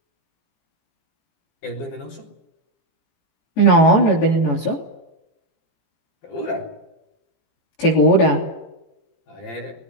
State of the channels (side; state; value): right; late; 18 ms